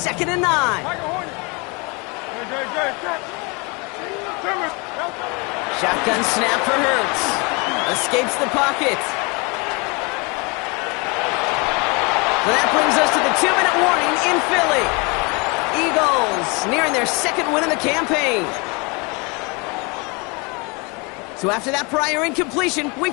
and 9. Shotgun snap for Hurts. Escapes the pocket. So that brings us to the 2-minute warning in Philly. Eagles nearing their second win of the campaign. So after that prior incompletion,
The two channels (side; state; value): right; quieter; 29.6 dB